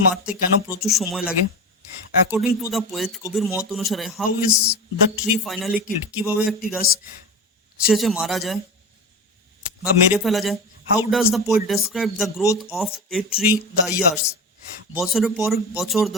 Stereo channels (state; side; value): normal; both; correlation 0.25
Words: মারতে কেন প্রচুর সময় লাগে? অ্যাকর্ডিং টু দ্য পোয়েট, কবির মত অনুসারে, how is the tree finally killed? কিভাবে একটি গাছ শেষে মারা যায় বা মেরে ফেলা যায়? How does the poet describe the growth of a tree the years? বছরের পর বছর